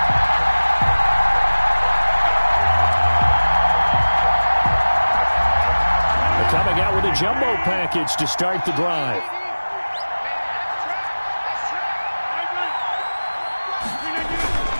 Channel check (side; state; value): both; inverted; correlation -1.00